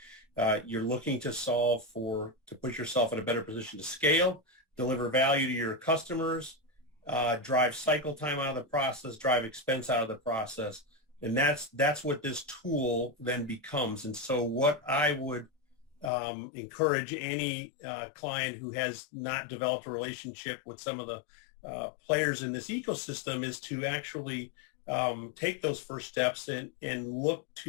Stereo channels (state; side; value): drops out; right; at 16.1 s